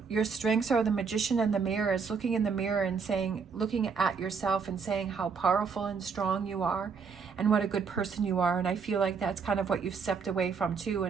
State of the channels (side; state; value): left; quieter; 5.6 dB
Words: your strengths are the magician and the mirror, is looking in the mirror and looking at yourself and saying how powerful and strong you are and what a good person you are. And I feel like that's kind of what you've stepped away from too.